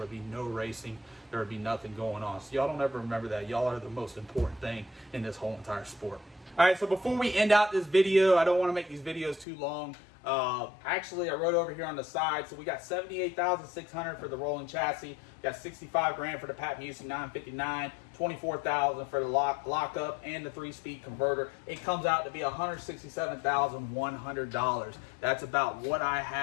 be no racing. There would be nothing going on. So y'all don't ever remember that. Y'all are the most important thing in this whole entire sport. All right, so before we end out this video, I don't want to make these videos too long. Actually, I wrote over here on the side, so we got $78,600 for the rolling chassis, got 65 grand for the Pat Musey 959, 24,000 for the lockup and the 3-speed converter. It comes out to be $167,100. That's about what I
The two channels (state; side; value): drops out; right; at 9.5 s